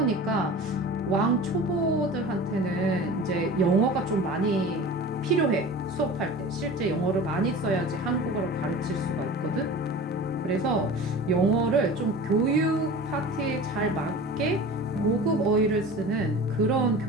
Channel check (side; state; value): both; normal; correlation 0.37